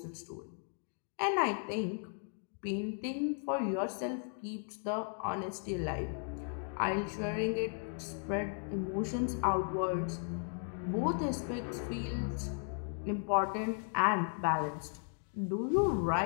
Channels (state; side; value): silent; right; 54 dB below the other